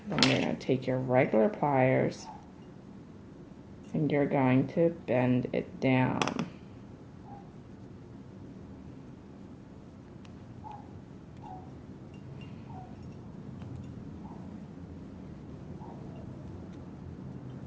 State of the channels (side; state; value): both; identical; correlation 1.00